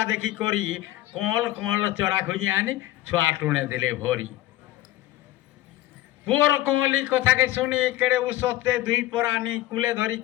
देखी करी कल कल चोरा खोजी आनी छुआ टुणे दिले भरी पुअर कमली कथा के सुनी केड़े उसते दुई परानी कुले धरी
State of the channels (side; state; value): right; quieter; 15.5 dB